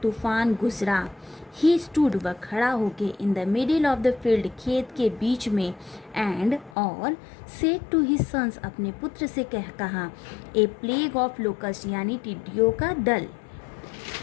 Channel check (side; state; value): right; drops out; at 6.8 s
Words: तूफान गुजरा, ही स्टूड वह खड़ा होके इन the middle of the field खेत के बीच में, एंड और सेड टू हिज सन्स अपने पुत्र से कहा, ए प्लेग ऑफ लोकस्ट यानी टिड्डियों का दल,